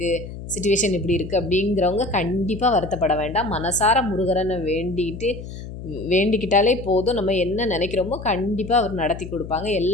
சுச்சுவேஷன் இப்படி இருக்குது அப்படிங்கிறவங்க கண்டிப்பாக வருத்தப்பட வேண்டாம். மனசார முருகரனை வேண்டிக்கிட்டாலே போதும். நம்ம என்ன நினைக்கிறோமோ கண்டிப்பாக அவர் நடத்தி கொடுப்பாங்க.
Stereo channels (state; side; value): noise; left; hum, 11 dB below the sound